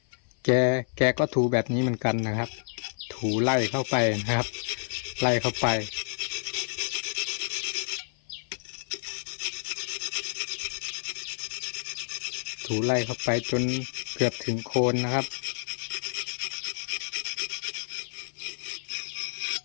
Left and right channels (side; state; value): right; silent; 56 dB below the other